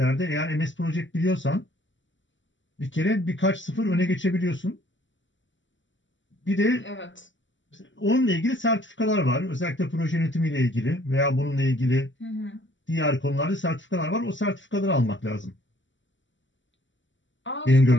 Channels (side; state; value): right; late; 0.55 ms